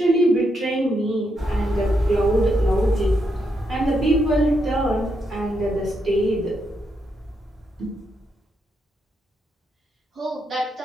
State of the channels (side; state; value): both; normal; correlation 0.80